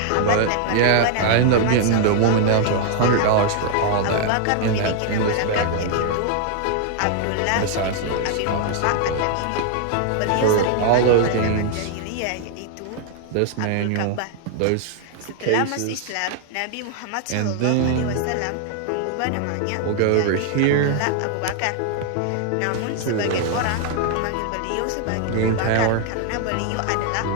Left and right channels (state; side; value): different; both; correlation 0.00